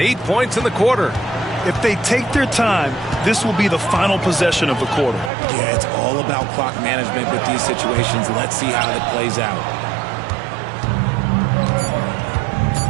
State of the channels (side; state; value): left; drops out; at 5.3 s